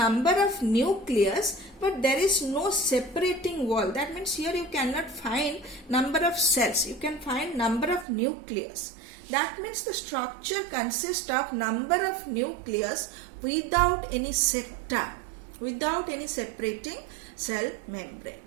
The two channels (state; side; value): drops out; left; at 8.1 s